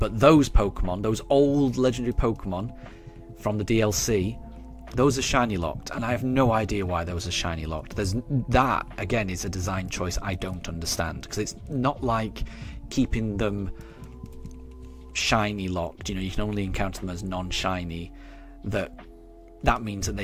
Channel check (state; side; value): identical; both; correlation 1.00